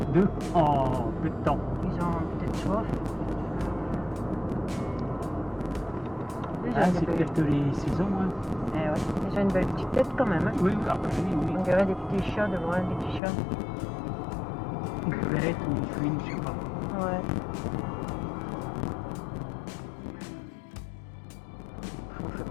2 en peu de temps. Ils ont peut-être soif. Ah, c'est peut-être les saisons. Hein. Eh ouais. Ils ont une belle petite tête quand même. Hein. Oui, oui. On dirait des petits chats de loin, des petits chats. Une belette ou une fouine, je sais pas. Ouais. On fait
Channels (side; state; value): right; drops out; at 13.2 s